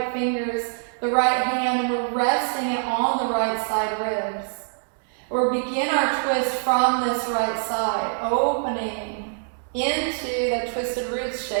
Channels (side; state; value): left; silent; 62 dB below the other